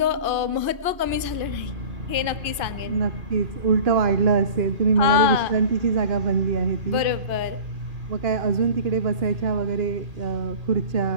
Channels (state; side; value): late; left; 2.5 ms